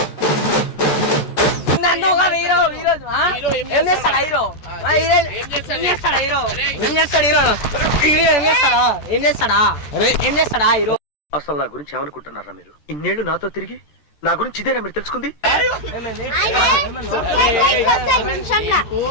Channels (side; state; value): right; late; 14 ms